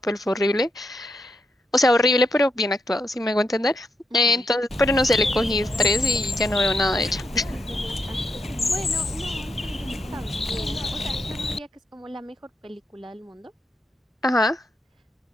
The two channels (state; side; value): normal; both; correlation 0.82